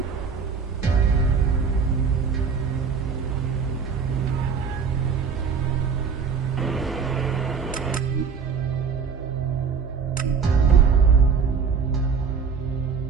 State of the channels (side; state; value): left; quieter; 5.9 dB